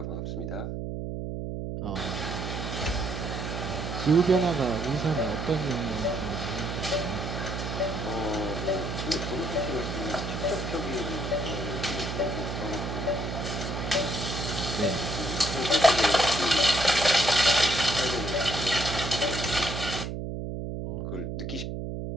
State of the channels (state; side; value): noise; right; hum, 4 dB below the sound